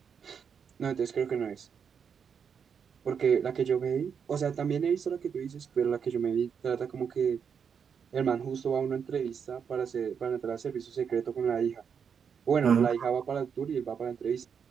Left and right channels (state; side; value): quieter; left; 7.0 dB